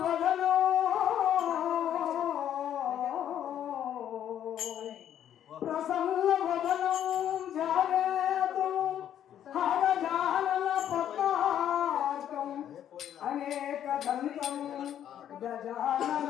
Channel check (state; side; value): quieter; right; 10.3 dB